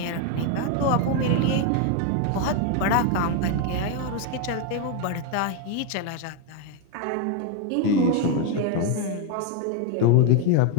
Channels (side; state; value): both; different; correlation 0.01